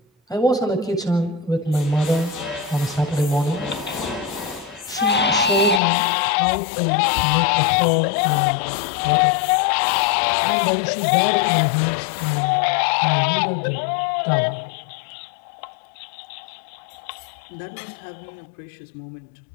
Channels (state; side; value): drops out; right; at 5.8 s